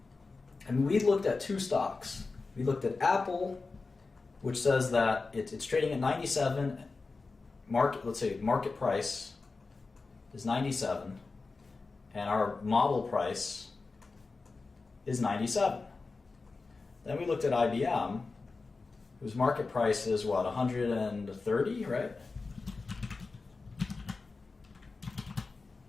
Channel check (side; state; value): right; quieter; 4.0 dB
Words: And we looked at two stocks. We looked at Apple, which says that it's trading at 97. Let's say market price is 97, and our model price is 97. Then we looked at IBM, whose market price is what, 130, right?